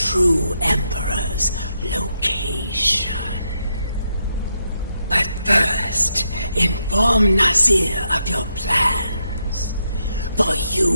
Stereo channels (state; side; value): inverted; both; correlation -0.80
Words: Emperor's location. But first, inform Nazir of your plans, for